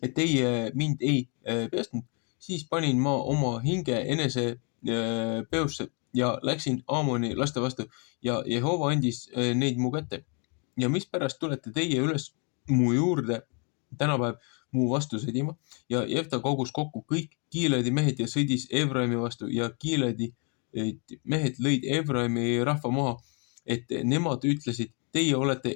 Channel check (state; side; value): quieter; right; 36.8 dB